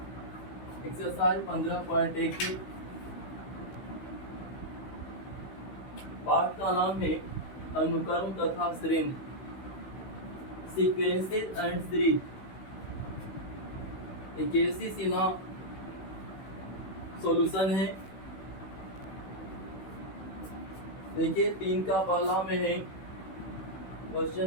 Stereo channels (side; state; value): right; late; 16 ms